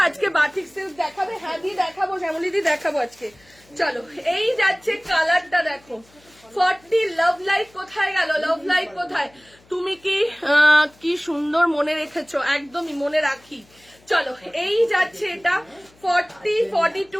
আজকে বাটিক সিল্ক দেখাবে? হ্যাঁ দি দেখাবো, শ্যামলী দি দেখাবো আজকে। চলো এই যাচ্ছে কালারটা দেখো, 40। লাভ লাইট কোথায় গেল? লাভ লাইট কোথায়? তুমি কি সুন্দর মনে রেখেছো, একদমই মনে রাখি। চলো এই যাচ্ছে এটা 40,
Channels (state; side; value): noise; left; hum, 30 dB below the sound